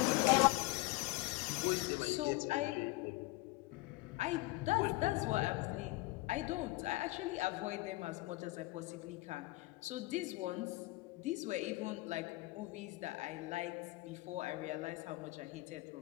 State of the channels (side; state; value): right; quieter; 20.9 dB